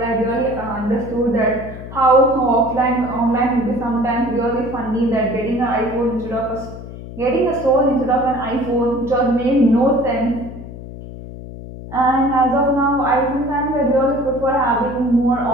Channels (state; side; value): noise; left; hum, 12 dB below the sound